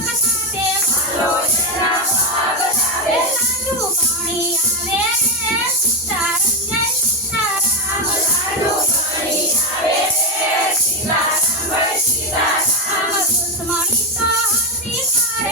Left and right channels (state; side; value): normal; both; correlation 0.10